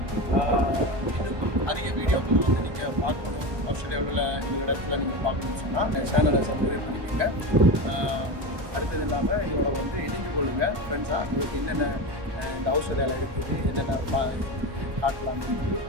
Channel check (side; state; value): left; late; 1.2 ms